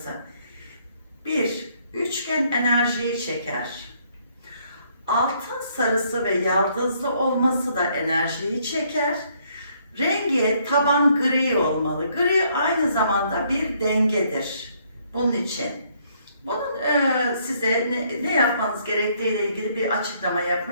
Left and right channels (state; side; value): inverted; both; correlation -0.68